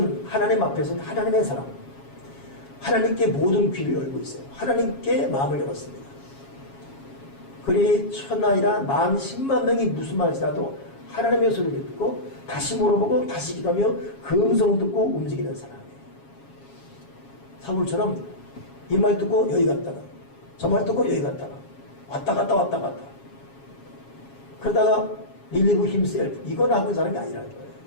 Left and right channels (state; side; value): late; right; 7.3 ms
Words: 하나님 앞에서는 하나님의 사람, 하나님께 모든 귀를 열고 있어요. 하나님께 마음을 열었습니다. 그리 천하이라 10,000만 명이 무슨 말이라도 하나님의 소리를 듣고 다시 물어보고 다시 기도하며 그 음성 듣고 움직이는 사람이에요. 사울처럼 이 말 듣고 여기 갔다가 저 말 듣고 여기 갔다가 왔다 갔다 왔다 갔다 그러다가 relieve himself 이건 하고 있는 사람이 아니라는 거예요.